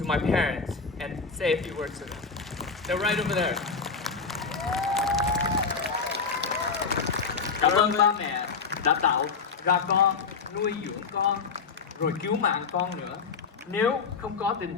my parents and say a few words to them. They're right over there. Cảm ơn ba mẹ đã tạo ra con, nuôi dưỡng con, rồi cứu mạng con nữa. Nếu không có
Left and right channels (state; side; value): quieter; right; 5.1 dB